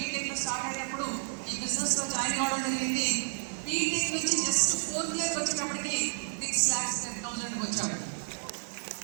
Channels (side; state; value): left; silent; 57 dB below the other